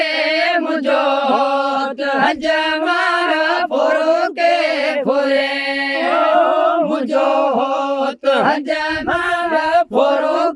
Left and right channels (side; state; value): both; identical; correlation 1.00